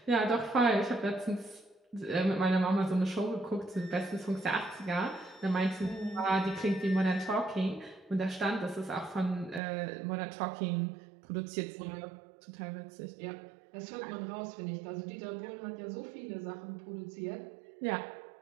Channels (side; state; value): left; drops out; at 9.6 s